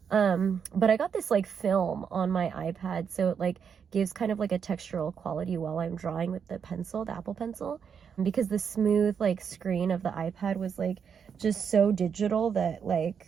But I got this like film on my iPad, so it like gives kind of like a textural quality while I'm drawing with the pencil, the Apple Pencil, because the smooth like screen of the iPad was like just so digital that like,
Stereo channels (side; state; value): left; quieter; 7.0 dB